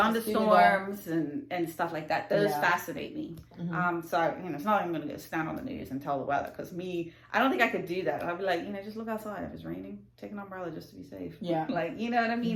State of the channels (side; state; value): both; identical; correlation 1.00